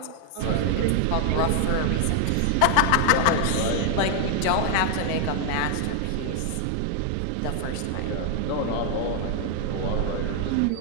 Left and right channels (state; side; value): different; both; correlation 0.00